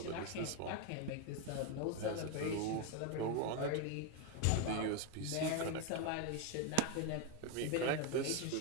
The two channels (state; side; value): different; both; correlation 0.01